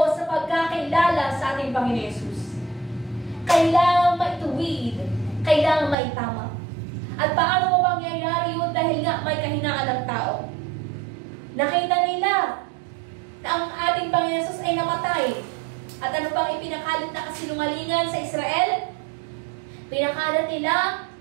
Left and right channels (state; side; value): drops out; left; at 6.0 s